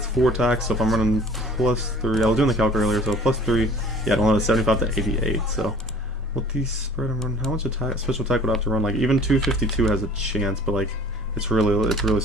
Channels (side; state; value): both; normal; correlation 0.49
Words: 4 attacks, so if I'm running +3, I was doing the calc earlier, so +3, yeah, I don't have a 75 to 88, so. What the spread I'm running, how much special attack would I have to run? Like, even 252 has a chance, but like, it's really